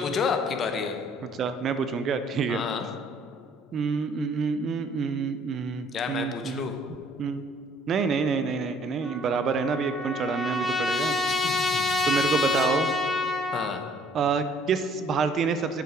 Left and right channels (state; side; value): normal; both; correlation 0.59